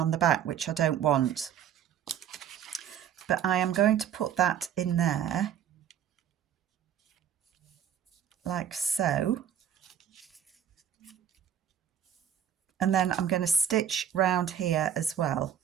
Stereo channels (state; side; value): quieter; left; 9.2 dB